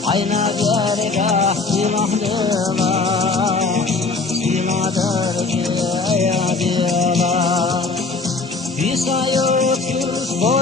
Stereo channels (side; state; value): right; quieter; 4.0 dB